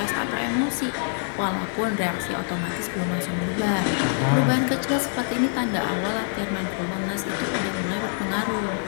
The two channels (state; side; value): silent; right; 62 dB below the other